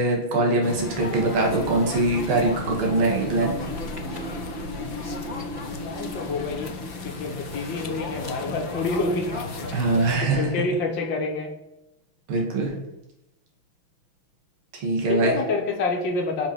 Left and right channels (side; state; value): left; late; 5.9 ms